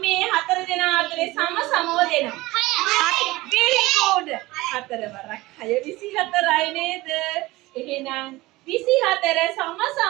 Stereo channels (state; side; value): quieter; left; 19.8 dB